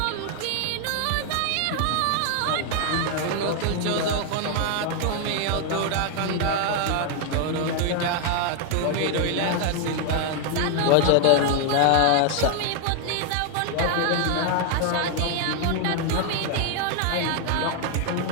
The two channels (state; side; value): different; both; correlation 0.00